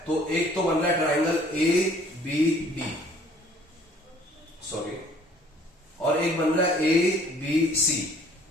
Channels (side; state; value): both; normal; correlation 0.56